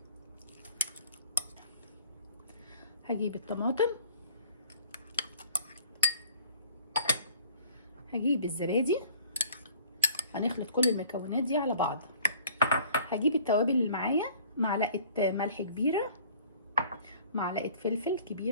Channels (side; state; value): both; inverted; correlation -0.53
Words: هجيب الطماطم، هجيب الزبادي. هنخلط كل المكونات دي على بعض. هجيب التوابل اللي معايا: معلقه ملح كبيره، معلقه فلفل